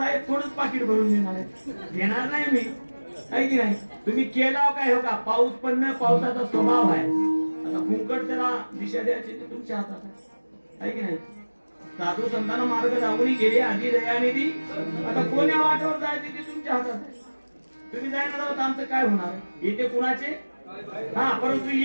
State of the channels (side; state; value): both; inverted; correlation -1.00